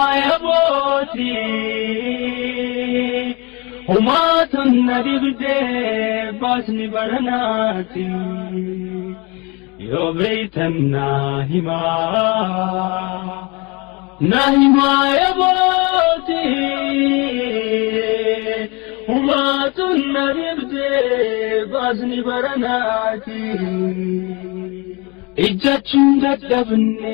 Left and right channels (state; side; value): quieter; right; 27.8 dB